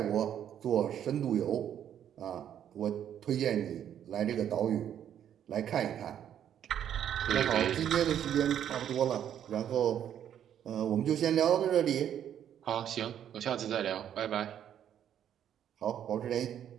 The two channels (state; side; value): quieter; left; 9.9 dB